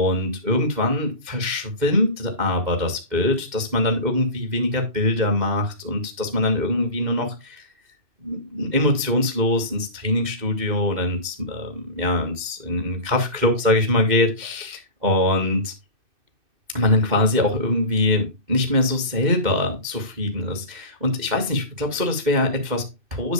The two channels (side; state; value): left; late; 2.6 ms